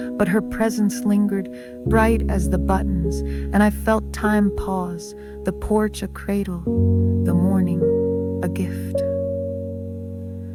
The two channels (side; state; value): both; identical; correlation 1.00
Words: but her presence lingered, bright as the buttons, and I felt time pause, the porch a cradle, the morning a gift.